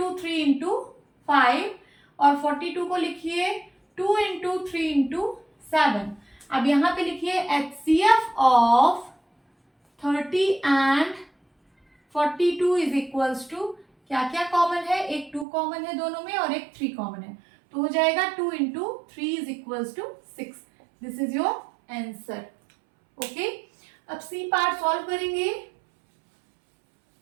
3 इंटू 5 और 42 को लिखिए 2 इंटू 3 इंटू 7। अब यहाँ पे लिखिए HCF of 30 and 42 is equals to, क्या क्या कॉमन है? एक 2 कॉमन है दोनों में और एक 3 कॉमन है। तो हो जाएगा 2 into 3 is equals to 6। This is your answer. Okay, अब सी पार्ट सॉल्व करेंगे।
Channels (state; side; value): drops out; left; at 15.5 s